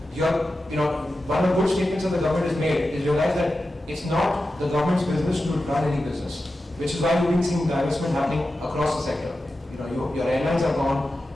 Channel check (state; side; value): normal; both; correlation 0.92